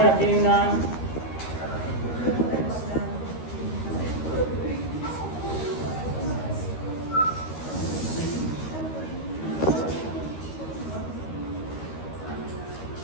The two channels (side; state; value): right; late; 13 ms